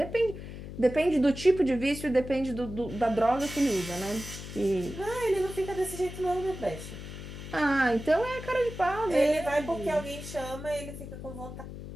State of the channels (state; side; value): noise; left; hum, 11 dB below the sound